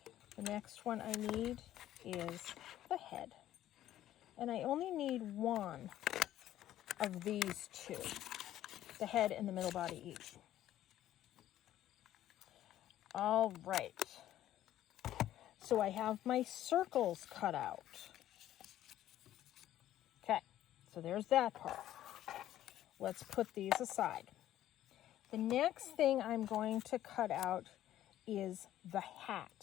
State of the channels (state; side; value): quieter; right; 12.8 dB